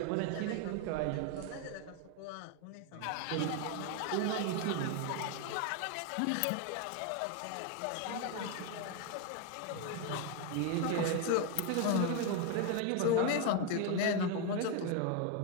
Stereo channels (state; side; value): different; both; correlation 0.01